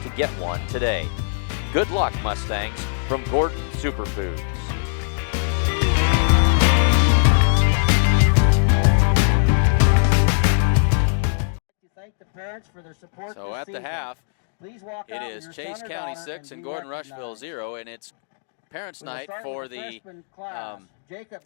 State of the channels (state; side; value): silent; right; digital silence